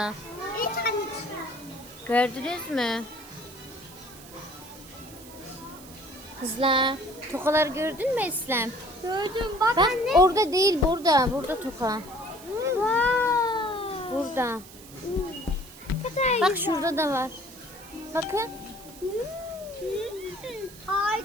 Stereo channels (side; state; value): right; noise; hiss, 19 dB below the sound